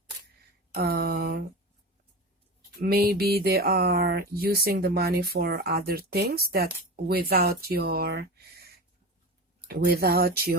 Maybe they are using the money for other things that without your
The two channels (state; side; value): normal; both; correlation 0.27